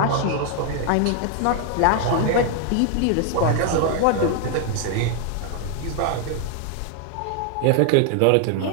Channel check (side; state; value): both; different; correlation 0.00